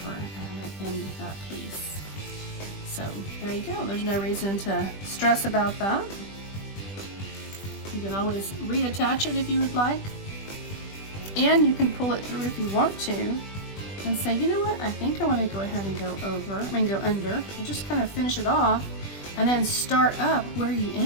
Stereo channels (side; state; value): right; late; 20 ms